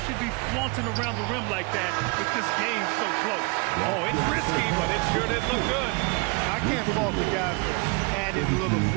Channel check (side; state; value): left; quieter; 29.9 dB